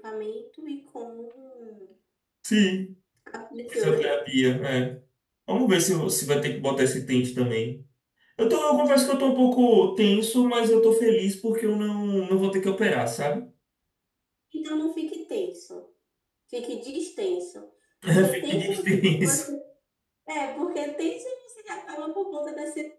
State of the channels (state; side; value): identical; both; correlation 1.00